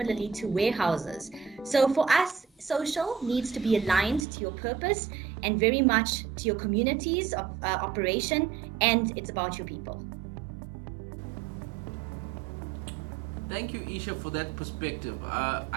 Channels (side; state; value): left; drops out; at 4.2 s